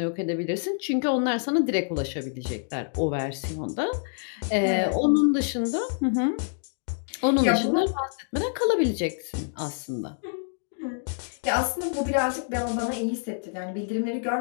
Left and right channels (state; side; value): silent; right; digital silence